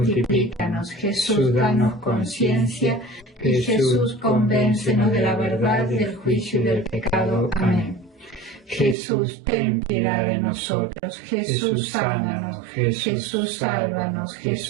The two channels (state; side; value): drops out; left; at 9.0 s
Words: Jesús, danos conciencia. Y Jesús, convéncenos de la verdad, del juicio y del pecado. Amén. Jesús, ten piedad de nosotros. Jesús, sánanos. Jesús, sálvanos.